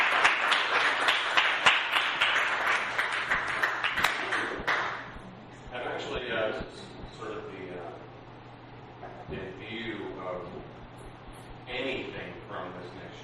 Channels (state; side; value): identical; both; correlation 1.00